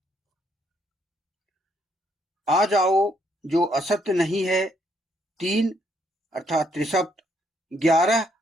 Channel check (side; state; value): both; normal; correlation 0.72